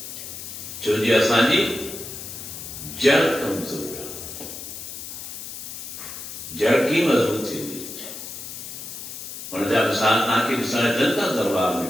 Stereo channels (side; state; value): left; noise; hiss, 9 dB below the sound